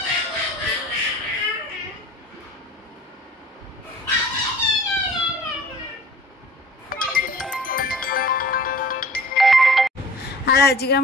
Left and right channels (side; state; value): both; normal; correlation 0.47